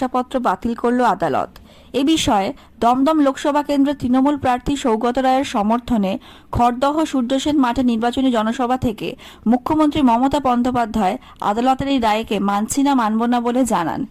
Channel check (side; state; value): both; identical; correlation 1.00